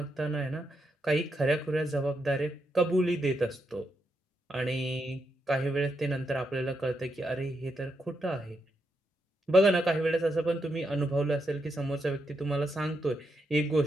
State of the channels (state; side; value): normal; both; correlation 0.82